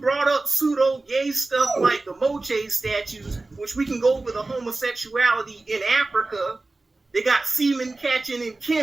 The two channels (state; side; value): quieter; left; 3.2 dB